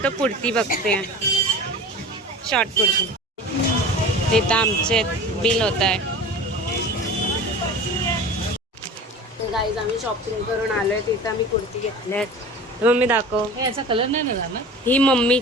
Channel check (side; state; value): both; normal; correlation 0.37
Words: कुर्ती बघते, शॉर्ट कुर्ती. इथं आमचे बिल होत आहे. गाईज आम्ही शॉपिंग करून आलोय. तिथं आम्ही कुर्ती घेतल्यात. मम्मी दाखव. याचा कलर नाही ना झाला. ही